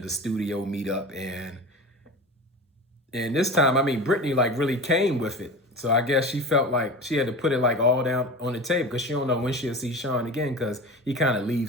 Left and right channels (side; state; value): both; normal; correlation 0.32